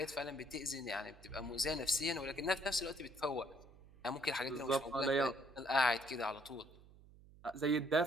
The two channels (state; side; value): noise; right; hum, 22 dB below the sound